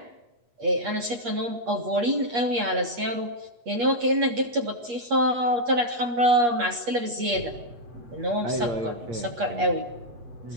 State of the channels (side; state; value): left; late; 8.4 ms